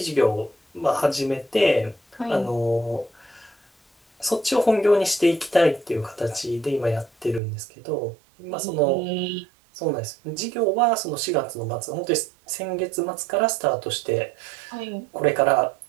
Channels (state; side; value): drops out; left; at 7.4 s